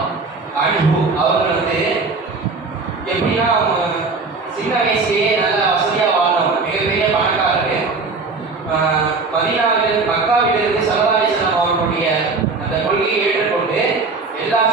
அன்ஹு அவர்கள் வந்து எப்படின்னா அவங்க சின்ன வயசுலேயே நல்லா வசதியாக வாழ்ந்தவங்க, மிகப்பெரிய பணக்காரரு. மக்காவிலிருந்து ஸல்லல்லாஹு அலைஹி வஸல்லம் அவர்களுடைய அந்த கொள்கையை ஏற்றுக்கொண்டு எல்லா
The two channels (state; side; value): quieter; left; 4.1 dB